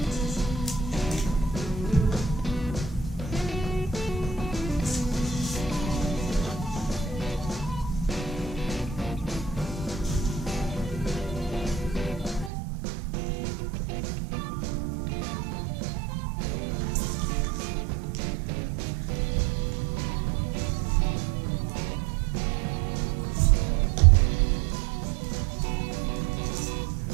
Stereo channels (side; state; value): left; drops out; at 12.5 s